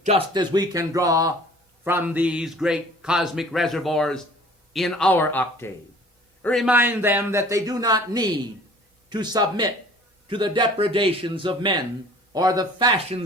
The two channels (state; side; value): normal; both; correlation 0.49